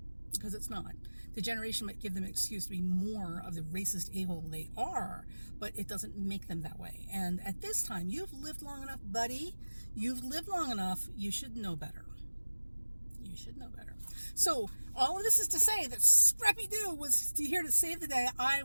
because it's not. The generation might give them an excuse to be more of the racist a-hole they are, but it doesn't make them that way. And at this time, you've lived long enough, buddy. You've lived long enough. You should know better. You should know better. So all of this is to say that Scrappy-Doo was here to save the day. I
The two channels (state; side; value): inverted; both; correlation -1.00